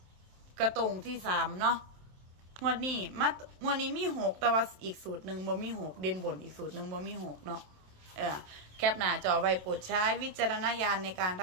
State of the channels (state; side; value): late; left; 27 ms